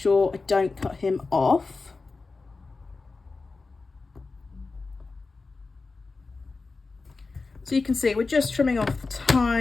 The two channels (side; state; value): right; quieter; 3.9 dB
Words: I don't cut him off. So you can see we're just trimming off the